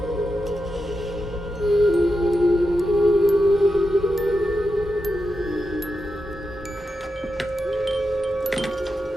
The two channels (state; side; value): normal; both; correlation 0.88